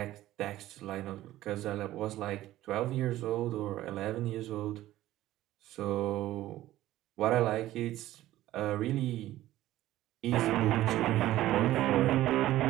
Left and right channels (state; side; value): quieter; left; 14.9 dB